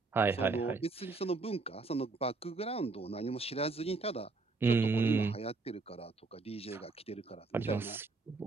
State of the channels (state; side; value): quieter; left; 3.8 dB